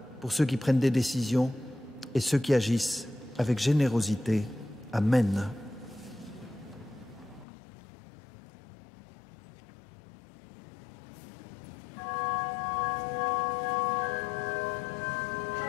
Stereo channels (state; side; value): drops out; right; at 7.5 s